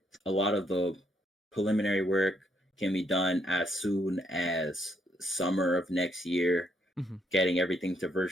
A lot of the preliminary work can be done as soon as summer of next year, getting everything to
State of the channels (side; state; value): both; normal; correlation 0.73